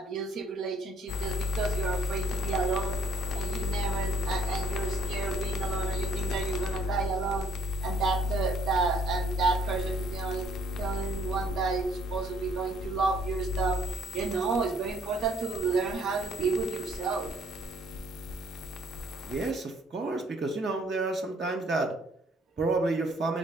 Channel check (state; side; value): normal; both; correlation 0.63